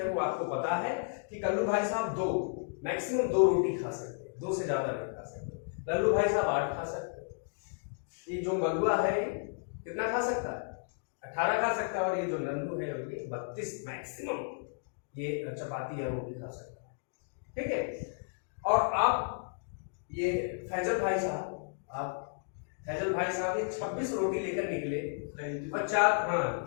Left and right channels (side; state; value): right; silent; digital silence